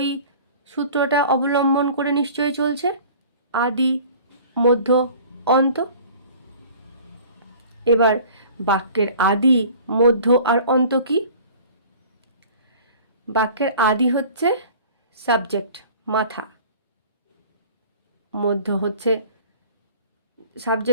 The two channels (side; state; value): both; inverted; correlation -0.46